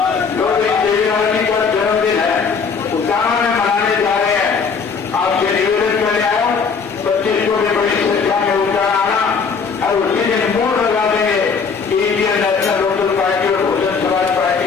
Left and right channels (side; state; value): right; quieter; 5.6 dB